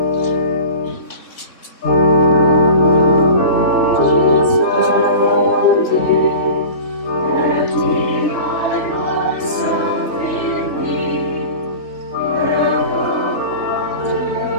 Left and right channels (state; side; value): late; right; 3.3 ms